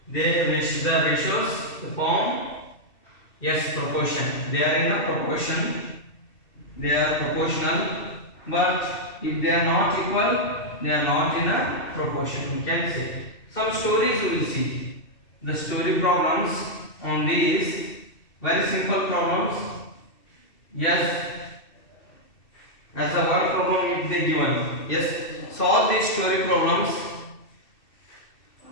the ratios form yes proportion. They are in a proportion. They are proportional, but if they are not equal, they are not in a proportion. We can say some stories we will see. The story problems on these very simple problems. Yes, as a one problem if they given. Yes, solve these story problems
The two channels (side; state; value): right; late; 2.7 ms